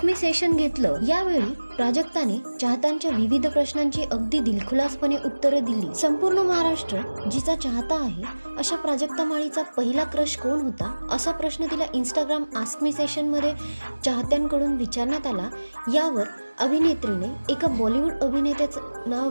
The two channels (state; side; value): inverted; both; correlation -1.00